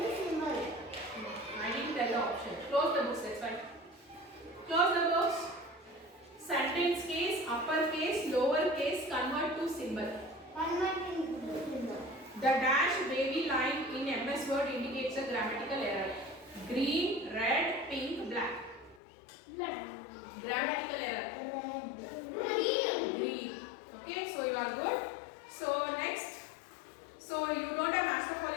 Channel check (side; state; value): right; drops out; at 19.0 s